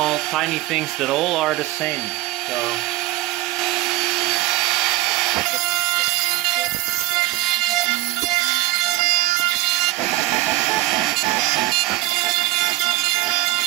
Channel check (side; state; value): left; quieter; 18.6 dB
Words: tiny things that all are the same. So